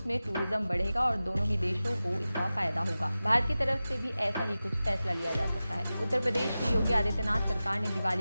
में टूरिज्म बढ़ेगा और दोनों ही देशों को इसका फायदा होगा। भारत की तरफ से भी ऐसा ही कुछ फैसला लिया जा सकता है। उत्तर प्रदेश की योगी आदित्यनाथ सरकार ने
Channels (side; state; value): both; inverted; correlation -0.95